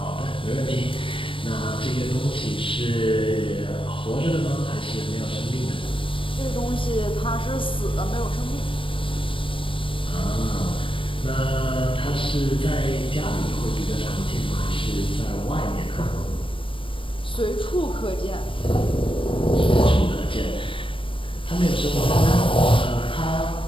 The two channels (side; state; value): right; late; 0.25 ms